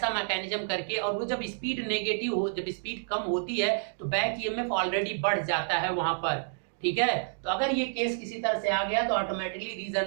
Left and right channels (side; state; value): left; silent; digital silence